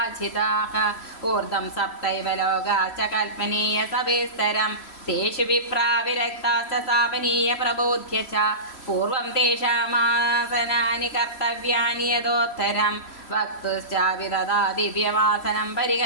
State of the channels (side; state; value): right; late; 3.0 ms